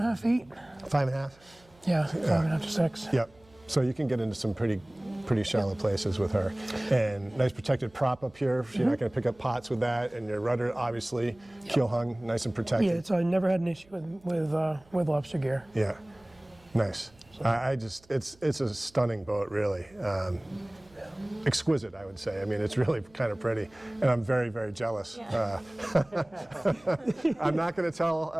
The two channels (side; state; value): right; noise; hum, 29 dB below the sound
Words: feet. 5.5? Yeah, 5.5 to 6. Yep. So you can get into some pretty shallow places with her. And nice protected prop up here. You're not going to pick up pots with that. And your rudder, obviously, keel hung, nice and protected. Yeah, I never had an issue with lobster gear. Yeah. Nice. It's a stunning boat, really. Exquisite, I would say. I mean, it's really kind of pretty, and I'm very, very jealous. I'm not going to tell